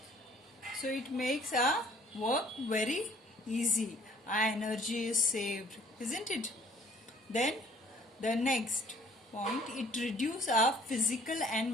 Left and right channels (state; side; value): normal; both; correlation 0.56